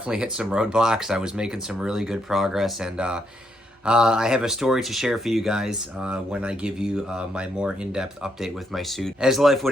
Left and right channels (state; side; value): normal; both; correlation 0.77